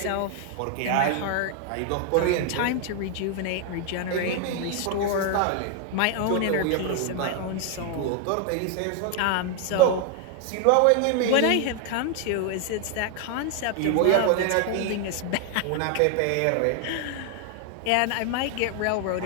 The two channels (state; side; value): different; both; correlation 0.00